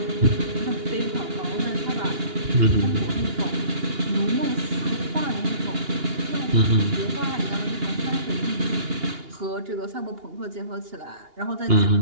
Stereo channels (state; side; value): late; left; 2.8 ms